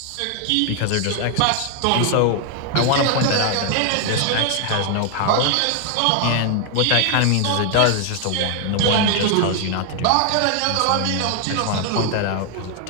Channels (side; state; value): both; different; correlation 0.00